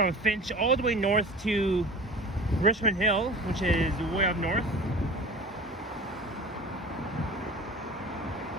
Finch all the way north to Richmond Hill, which is way up north.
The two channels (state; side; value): normal; both; correlation 0.38